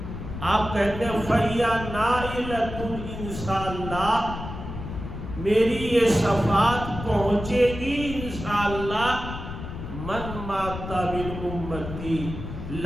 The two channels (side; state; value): left; noise; rumble, 8 dB below the sound